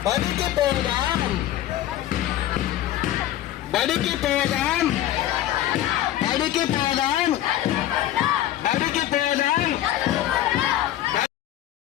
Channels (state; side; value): quieter; right; 13.1 dB